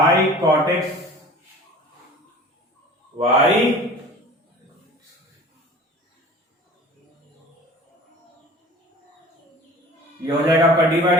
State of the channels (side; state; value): both; normal; correlation 0.43